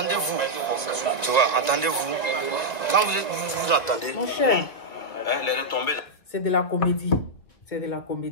tu vois, entendez-vous. Quand vous entendez, mon cher, les retombées là. C'est de la comédie, c'est de la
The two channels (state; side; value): late; right; 2.4 ms